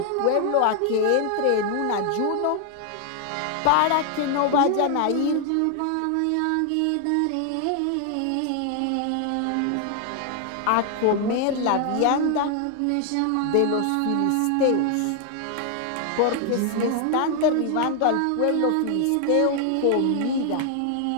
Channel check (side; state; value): both; different; correlation 0.00